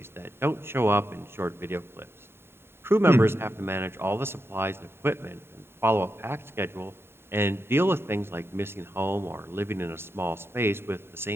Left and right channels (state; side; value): late; left; 0.11 ms